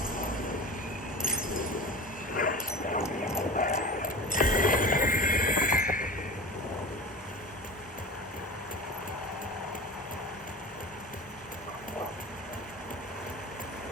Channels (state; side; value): normal; both; correlation 0.33